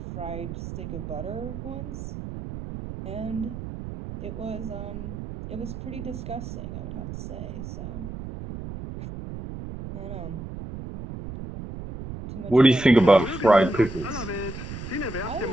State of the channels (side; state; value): right; noise; rumble, 9 dB below the sound